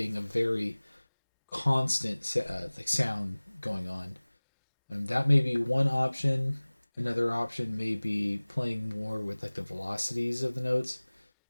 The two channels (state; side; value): inverted; both; correlation -1.00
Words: a very constant like sound going on. And that may be one option. Another option may be playing more with like the velocities of the notes